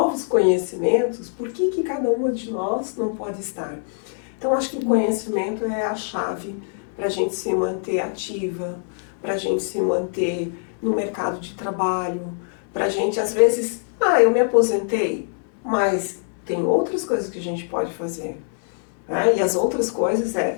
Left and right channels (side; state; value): right; silent; 63 dB below the other